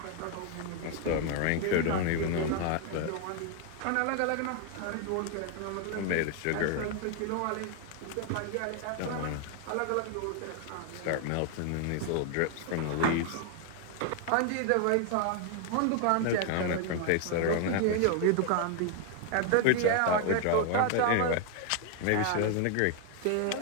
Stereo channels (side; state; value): both; different; correlation 0.00